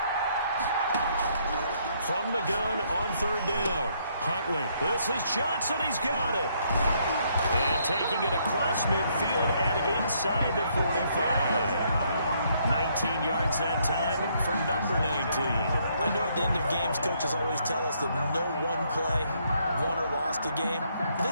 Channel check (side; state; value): both; inverted; correlation -0.70